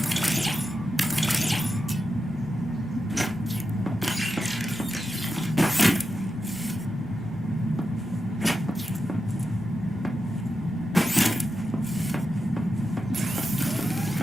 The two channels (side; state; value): right; noise; hum, 26 dB below the sound